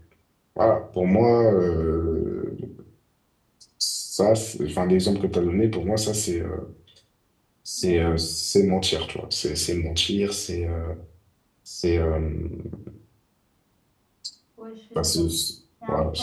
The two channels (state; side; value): identical; both; correlation 1.00